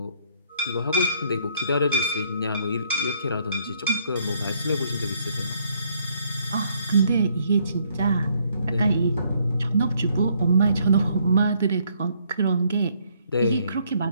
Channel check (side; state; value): both; inverted; correlation -0.68